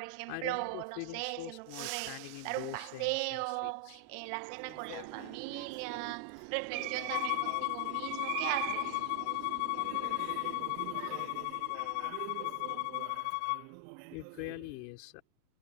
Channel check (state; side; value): different; both; correlation 0.00